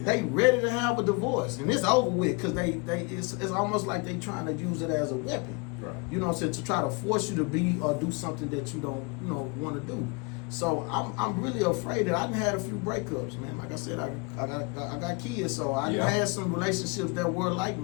they ready to have a divorce, and it's over with because it's almost like they trying to use it as a weapon. Right. You know what I'm saying, to try to force you to be or do something that you don't, you know, want to do. So I'm really afraid that I done had a few breakups, man. Like I said, I got kids, so I done Yeah. had some relationships that were like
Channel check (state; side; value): quieter; right; 29.4 dB